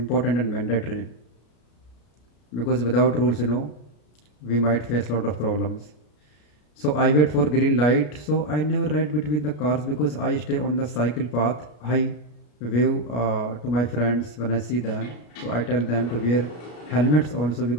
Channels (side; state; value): right; late; 33 ms